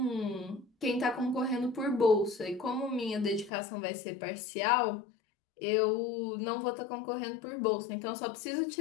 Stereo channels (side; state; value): right; drops out; at 3.5 s